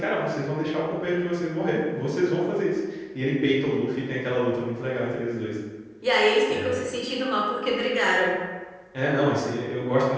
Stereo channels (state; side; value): identical; both; correlation 1.00